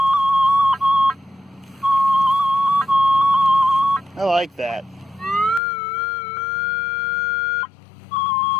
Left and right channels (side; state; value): right; drops out; at 5.6 s